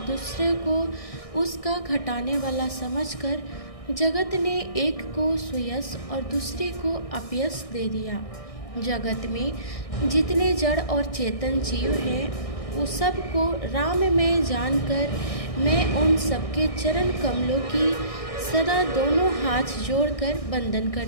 दूसरे को उसका घटाने वाला समझकर जगत ने एक को सुयश और दूसरे को अपयश दे दिया। जगत में जितने जड़ और चेतन जीव हैं, उस सब को राम में जानकर मैं उन सबके चरण कमलों की सदा दोनों हाथ जोड़कर वंदन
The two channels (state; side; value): late; right; 1.6 ms